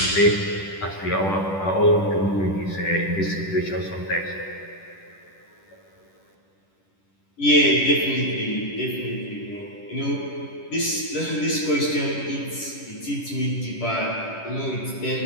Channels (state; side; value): late; right; 10 ms